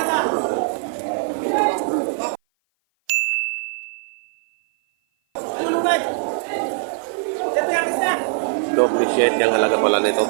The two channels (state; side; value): silent; left; 56 dB below the other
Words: Double shade yung halaga pala nito.